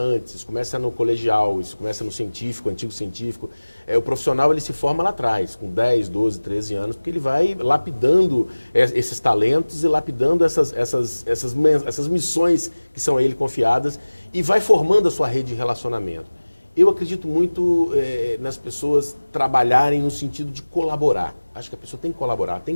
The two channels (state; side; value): inverted; both; correlation -1.00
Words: isso começa no colegial, isso começa no científico, antigo científico. O profissional ele se forma lá atrás, com 10, 12, 13 anos, porque ele vai lapidando esses talentos e lapidando essas missões que são a ele confiadas e vai formando a sua rede de relacionamento. Eu acredito muito nas pessoas trabalharem no sentido de colaborar. Acho que a pessoa tem que colaborar, tem